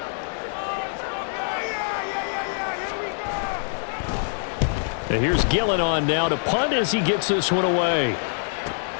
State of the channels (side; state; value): right; silent; digital silence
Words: And here's Gillen on now to punt as he gets this one away.